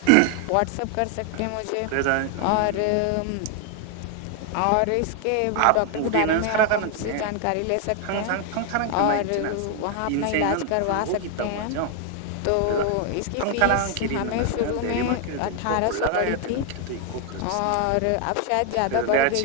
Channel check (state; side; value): different; both; correlation 0.00